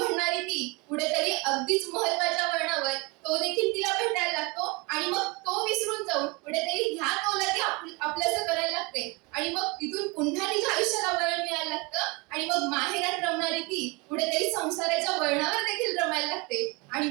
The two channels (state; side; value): quieter; left; 27.5 dB